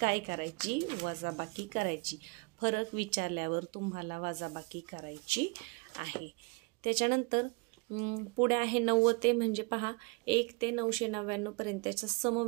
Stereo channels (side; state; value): left; quieter; 29.7 dB